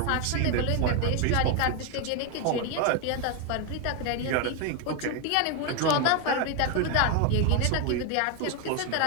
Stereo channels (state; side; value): different; both; correlation 0.01